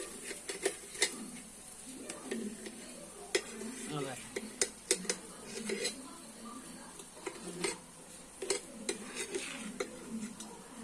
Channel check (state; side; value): identical; both; correlation 1.00